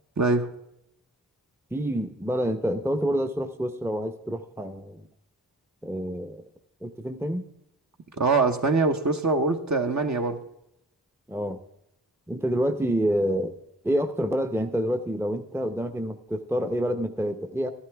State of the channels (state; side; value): normal; both; correlation 0.55